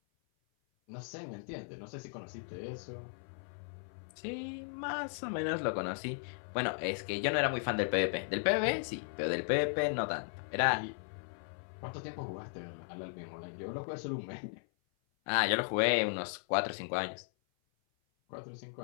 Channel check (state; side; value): silent; right; 54 dB below the other